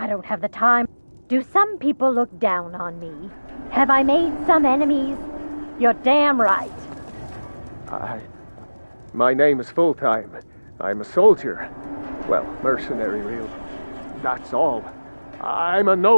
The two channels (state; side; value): inverted; both; correlation -1.00